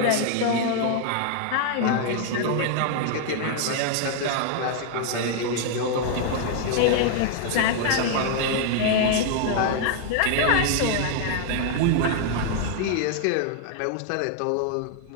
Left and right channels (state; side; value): different; both; correlation 0.00